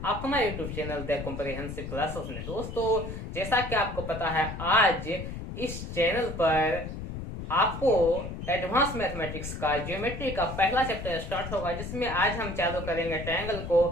अपना YouTube channel the comprehensive classes में। दोस्तों, जैसा कि आपको पता है, आज इस चैनल पर आपको एडवांस मैथमेटिक्स का ज्योमेट्री का पहला चैप्टर स्टार्ट होगा, जिसमें आज हम चालू करेंगे ट्रायंगल को।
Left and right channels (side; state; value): left; noise; rumble, 7 dB below the sound